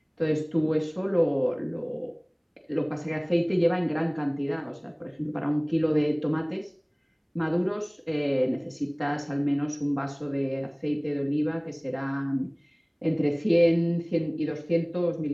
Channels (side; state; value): both; identical; correlation 1.00